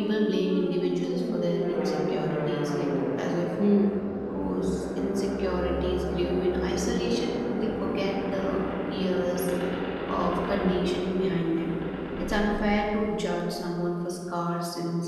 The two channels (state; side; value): identical; both; correlation 1.00